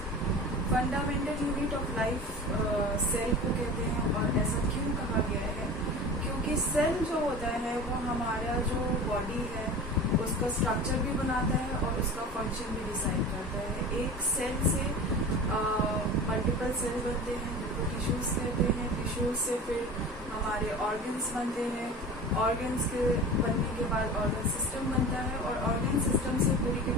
Fundamental unit of life cell को कहते हैं और ऐसा क्यों कहा गया है क्योंकि सेल जो होता है वो हमारा जो बॉडी है उसका स्ट्रक्चर भी बनाता है और उसका फंक्शन भी डिसाइड करता है। एक सेल से मल्टीपल सेल बनते हैं जिनको टिश्यूज कहते हैं। टिश्यूज से फिर हमारे ऑर्गन्स बनते हैं। ऑर्गन्स के बनने के बाद ऑर्गन सिस्टम बनता है और ऑर्गन सिस्टम से पूरी की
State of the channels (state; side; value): normal; both; correlation 0.35